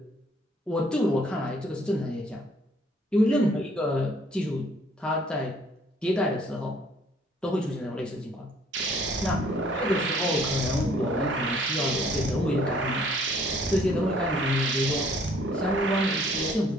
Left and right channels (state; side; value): normal; both; correlation 0.60